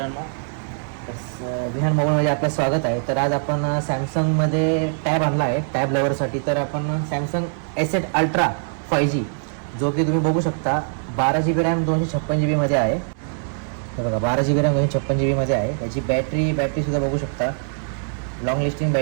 विहान मोबाईलमध्ये आपलं स्वागत आहे. तर आज आपण सॅमसंगमध्ये टॅब आणला आहे टॅब लवरसाठी. तर आपण सॅमसंग S8 अल्ट्रा 5G जो की तुम्ही बघू शकता 12 GB रॅम 256 GB मध्ये आहे. हे बघा 12 GB रॅम 256 GB मध्ये आहे. त्याची बॅटरीसुद्धा बघू शकता, लॉंग लास्टिंग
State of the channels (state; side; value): silent; left; digital silence